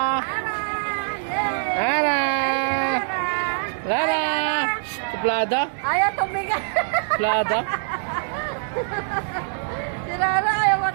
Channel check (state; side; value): silent; left; 63 dB below the other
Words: Rara! Rara! Suplada? Ayaw tumigas. Suplada? Si Rara ayaw